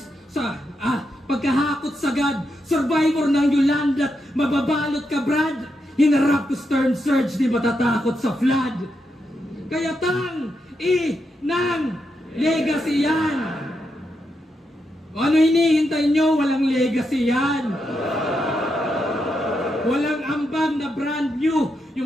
sa pagkahakot sagad. Survivor ng Yolanda, mababalot ka Brad. Hinarap ko storm surge, di matatakot sa flood. Kaya ng legacy yan. Ano hinihintay nyo? Walang legacy yan. Walang ambag na brand new.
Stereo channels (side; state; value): both; normal; correlation 0.83